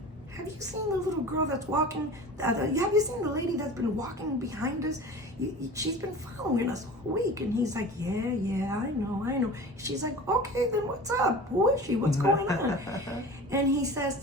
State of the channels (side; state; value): both; normal; correlation 0.37